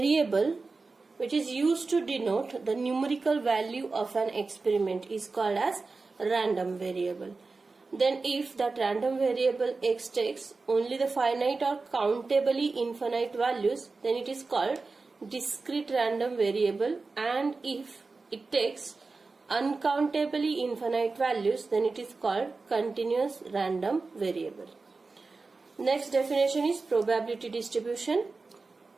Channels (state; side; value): quieter; left; 3.9 dB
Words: which is used to denote the numerical value of an experiment is called as random variable. Then if that random variable x takes only the finite or countably infinite values, then it is called discrete random variable, and if it takes uncountably infinite values, then it is called continuous random variable. Next definition is probability distribution.